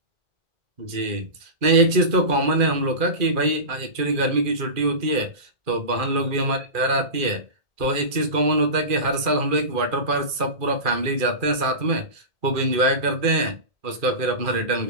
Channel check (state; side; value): late; left; 2.4 ms